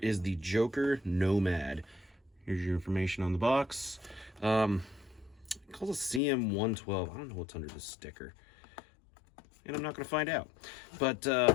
the Joker Nomad. Here's your information on the box. It calls a CM112. I don't know what's under this sticker. And I'm not going to find out. But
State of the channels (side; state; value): right; drops out; at 6.2 s